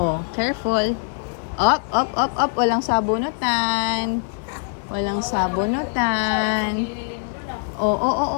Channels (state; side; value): silent; right; digital silence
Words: careful. Up. Walang sabunutan. Walang sabunutan. Oh.